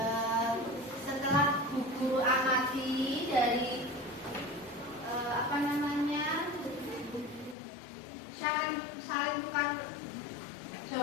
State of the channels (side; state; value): right; drops out; at 7.6 s